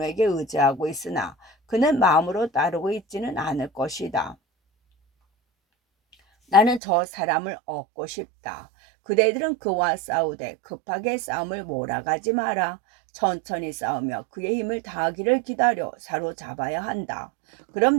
의지하고 있으나 그는 마음으로 따르고 있지는 않을 것이다. 나는 저 사람을 얻고 싶다. 그대들은 그와 싸우되 급하게 싸움을 몰아가지 마라. 천천히 싸우며 그의 힘을 다하기를 기다려 사로잡아야 한다.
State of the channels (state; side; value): drops out; left; at 6.8 s